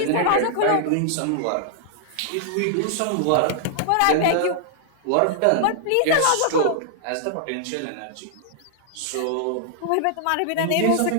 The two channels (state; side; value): different; both; correlation -0.01